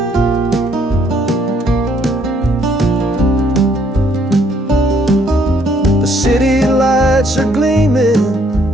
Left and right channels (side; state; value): both; normal; correlation 0.67